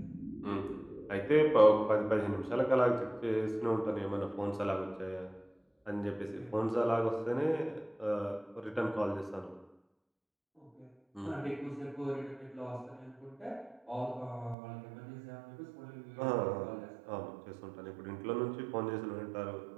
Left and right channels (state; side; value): drops out; left; at 14.6 s